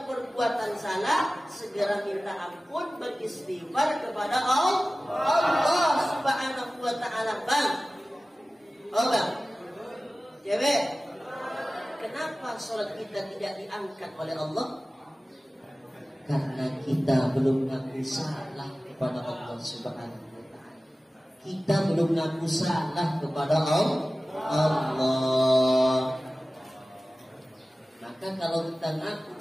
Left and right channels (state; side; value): normal; both; correlation 0.97